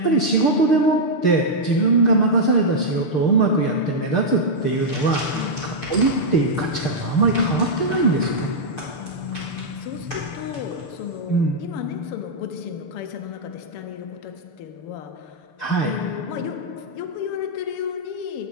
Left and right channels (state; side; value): late; right; 6.6 ms